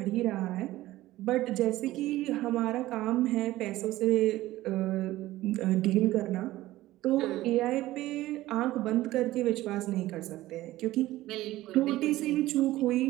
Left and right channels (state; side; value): quieter; left; 16.4 dB